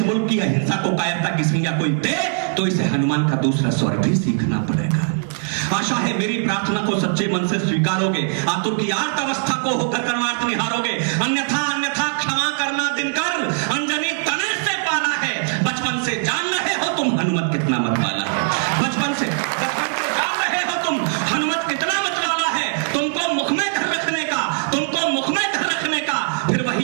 मुल्क की अहिंसा को कायरता की संज्ञा कोई दे तो इसे हनुमान का दूसरा स्वर भी सीखना पड़ेगा। आशा है मेरी प्रार्थना को सच्चे मन से स्वीकारोगे, आतुर की आर्त अवस्था को होकर कर्मार्थ निहारोगे। अन्यथा क्षमा करना दिनकर, अंजनी तने से पाला है। बचपन से जान रहे हो तुम हनुमत कितना मत वाला है। बचपन से जान रहे हो तुम हनुमत कितना मत वाला है। तुमको मुख में धर रखने का, तुमको मुख में धर रखने का फिर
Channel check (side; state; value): left; silent; digital silence